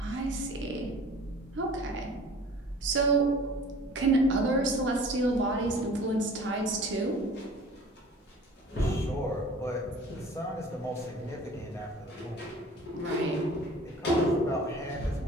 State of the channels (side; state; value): both; normal; correlation 0.46